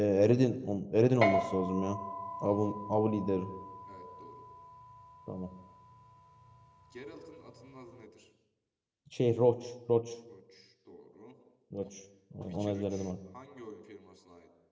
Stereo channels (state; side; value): identical; both; correlation 1.00